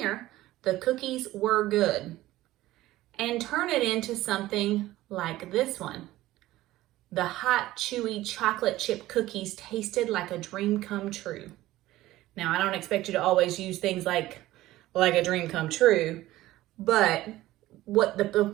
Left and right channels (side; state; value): left; quieter; 16.2 dB